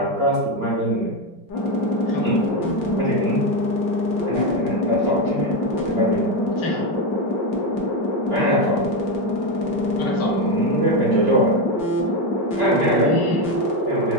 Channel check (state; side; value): late; right; 5.2 ms